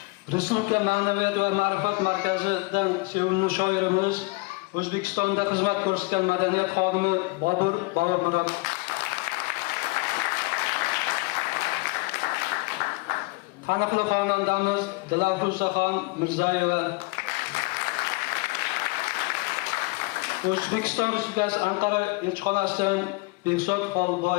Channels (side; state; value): right; quieter; 26.5 dB